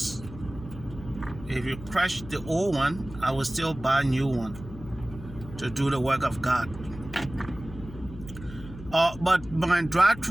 if you crash the old one, I will still buy a new one to do the work of God. But my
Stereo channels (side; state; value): left; noise; hum, 14 dB below the sound